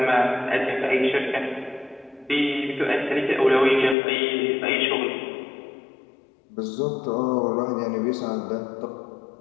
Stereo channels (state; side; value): drops out; right; at 4.0 s